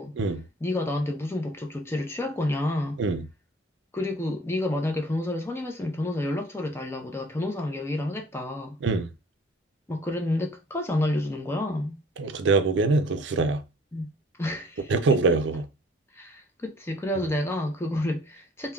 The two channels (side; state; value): both; normal; correlation 0.53